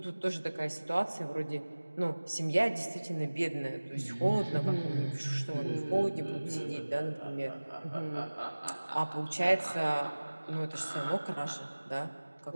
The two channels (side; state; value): both; inverted; correlation -1.00